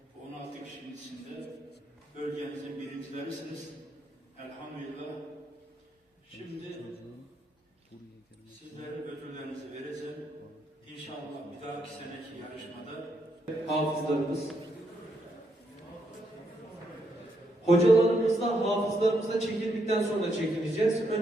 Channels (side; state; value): both; normal; correlation 0.77